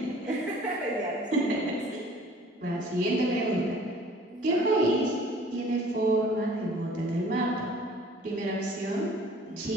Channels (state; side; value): normal; both; correlation 0.51